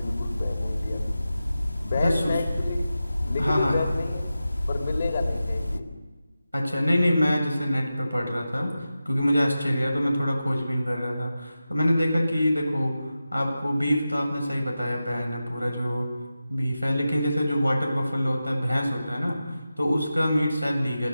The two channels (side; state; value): both; inverted; correlation -0.93